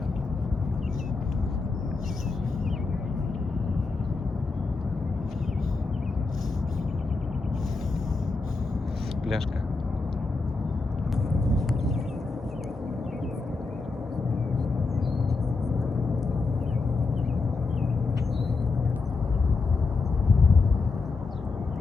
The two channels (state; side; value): quieter; right; 4.0 dB